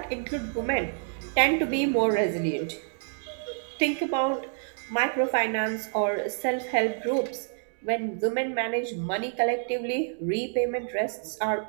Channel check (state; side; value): silent; left; 59 dB below the other